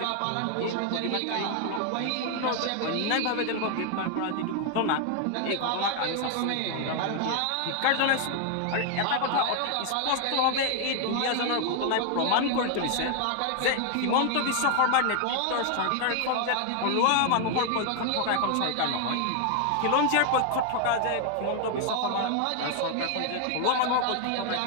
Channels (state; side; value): different; both; correlation 0.00